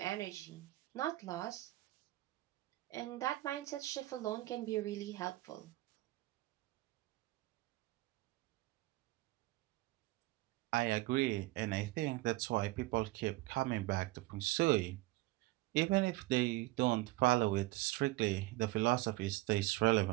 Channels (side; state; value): left; quieter; 19.5 dB